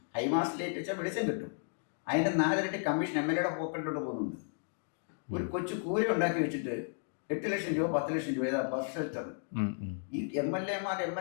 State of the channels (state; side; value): silent; right; digital silence